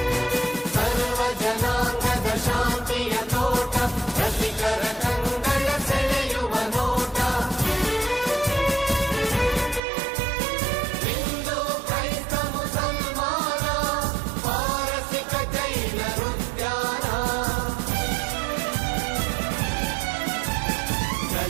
ಸರ್ವ ಜನಾಂಗದ ಶಾಂತಿಯ ತೋಟ ರಸಿಕರ ಕಂಗಳ ಸೆಳೆಯುವ ನೋಟ ಹಿಂದೂ ಕ್ರೈಸ್ತ ಮುಸಲ್ಮಾನ ಪಾರಸಿಕ ಜೈನರುದ್ಯಾನ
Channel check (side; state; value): left; drops out; at 9.8 s